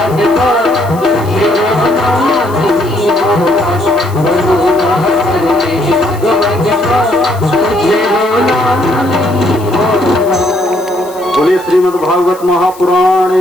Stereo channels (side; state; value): left; noise; hiss, 21 dB below the sound